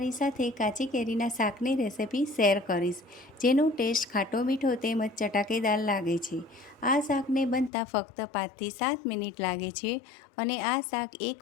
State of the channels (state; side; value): drops out; right; at 7.7 s